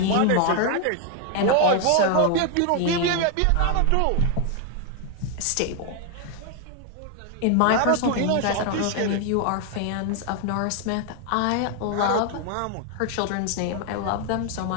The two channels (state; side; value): different; both; correlation 0.00